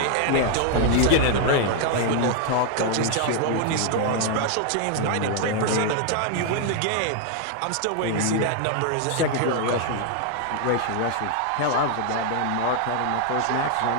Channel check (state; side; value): different; both; correlation 0.00